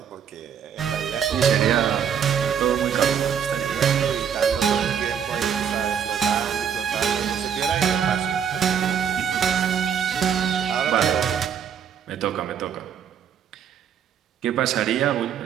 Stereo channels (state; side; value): quieter; left; 8.0 dB